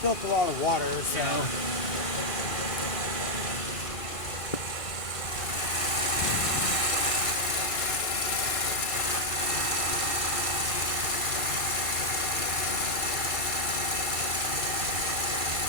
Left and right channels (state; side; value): late; right; 1.6 ms